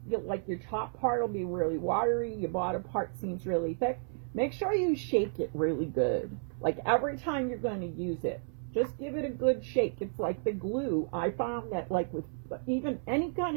like your top part will be really watery, your bottom part seems really thick. Make sure you shake it really good. Like every time you're going to use it, just give it a good shake. It's like the glue. I found that like with even any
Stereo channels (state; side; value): silent; left; 56 dB below the other